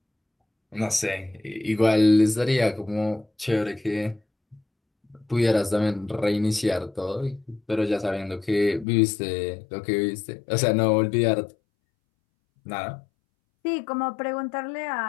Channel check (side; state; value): right; drops out; at 8.8 s